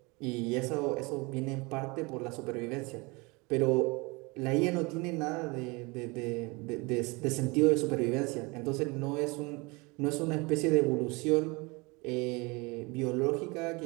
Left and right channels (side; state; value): left; quieter; 26.7 dB